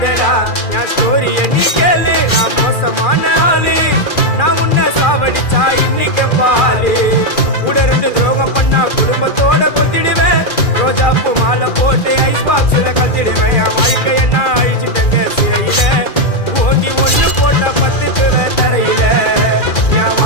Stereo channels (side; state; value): right; late; 2.4 ms